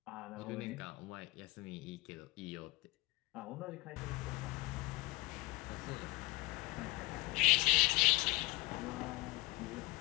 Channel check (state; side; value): quieter; right; 23.3 dB